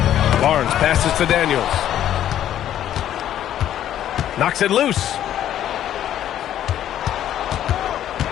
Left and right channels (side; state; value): right; quieter; 11.3 dB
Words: Barnes passes to Daniels. Knocks it loose.